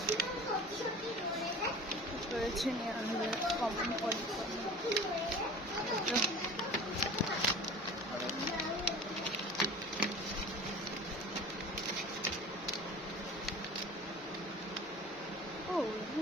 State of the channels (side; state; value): both; normal; correlation 0.39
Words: করেছে কমন পলি ও